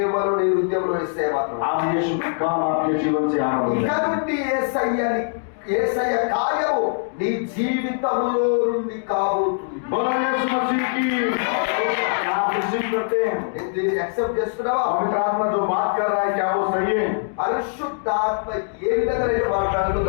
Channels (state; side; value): silent; right; digital silence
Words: నీ హృదయంలో ఇస్తే మాత్రం आप यीशु का काम आपके जीवन से आरंभ ఇక करें। నుండి యేసయ్య కార్యము నీ జీవితంలో నుండి కాబోతుంది. बोलो यीशु मसीह की। क्या आप रिसीव करते हैं? నేను దీన్ని యాక్సెప్ట్ చేస్తున్నావా? पवित्र आत्मा जो बात कर रहा है क्या वो सही है? పరిశుద్ధాత్మ ఏ విధంగా నేను